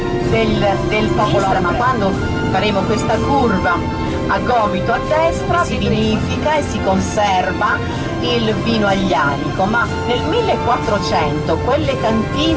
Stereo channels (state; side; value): identical; both; correlation 1.00